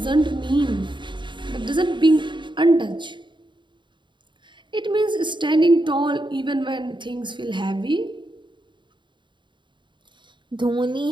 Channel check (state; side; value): late; left; 0.23 ms